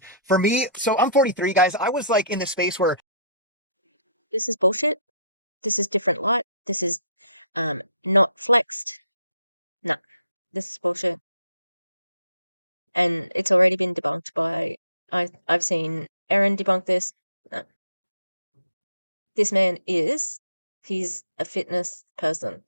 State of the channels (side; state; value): both; inverted; correlation -0.61